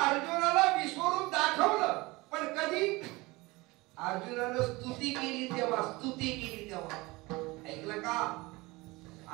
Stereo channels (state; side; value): quieter; left; 22.6 dB